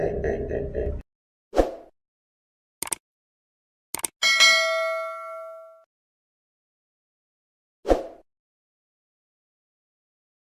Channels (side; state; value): both; identical; correlation 1.00